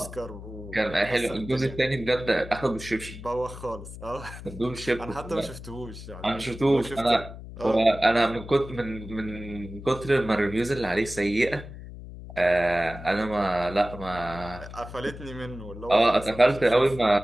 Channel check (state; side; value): noise; left; hum, 13 dB below the sound